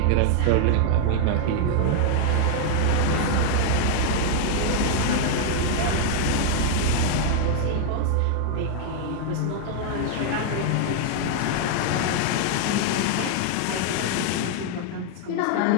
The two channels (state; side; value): different; both; correlation 0.00